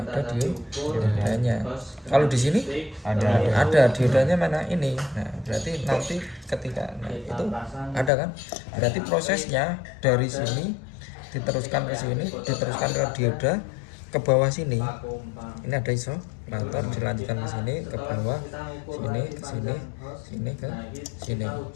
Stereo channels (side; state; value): right; drops out; at 8.1 s